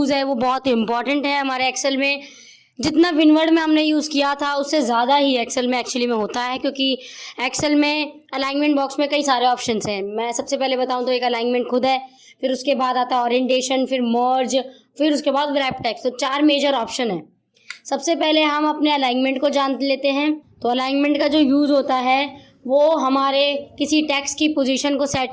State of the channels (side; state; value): both; identical; correlation 1.00